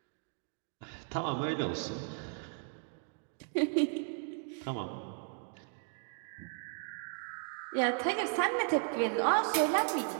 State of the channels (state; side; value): silent; left; 54 dB below the other